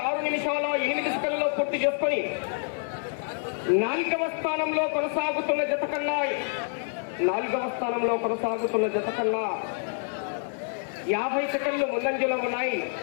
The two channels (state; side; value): silent; right; 60 dB below the other